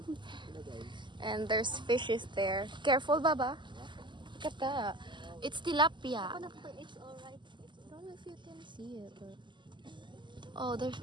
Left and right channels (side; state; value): left; late; 0.22 ms